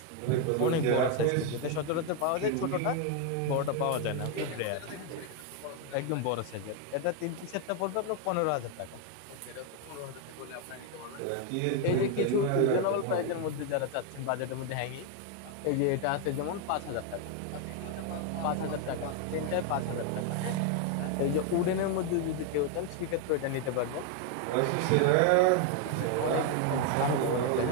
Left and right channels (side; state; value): both; different; correlation 0.01